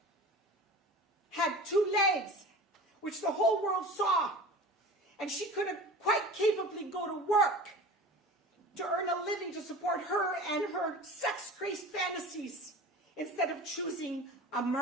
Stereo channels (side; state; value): both; normal; correlation 0.37